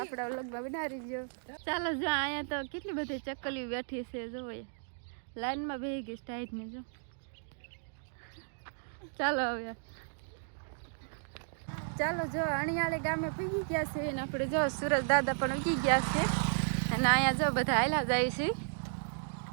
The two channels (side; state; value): left; silent; digital silence